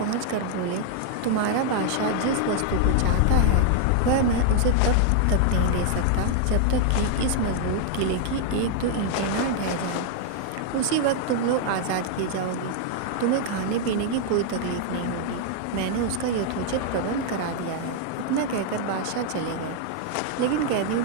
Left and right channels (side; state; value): both; different; correlation 0.00